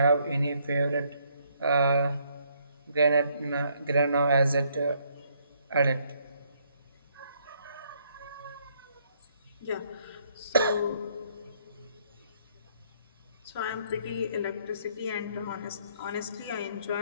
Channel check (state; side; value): inverted; both; correlation -0.70